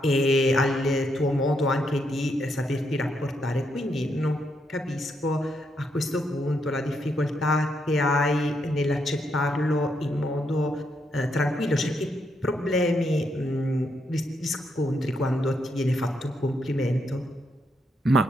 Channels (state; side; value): normal; both; correlation 0.78